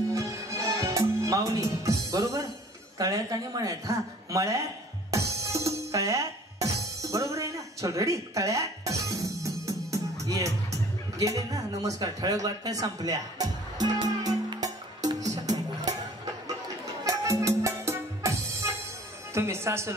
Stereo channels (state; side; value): normal; both; correlation 0.51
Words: माऊली. बरोबर. तळ्यात आणि मळ्यात. हा, मळ्यात, तळ्यात. बरोबर आहे ना? चल. रेडी? तळ्यात. ये गेले ना. नमस्कार. ठळक बातम्या संपल्या. तुम्ही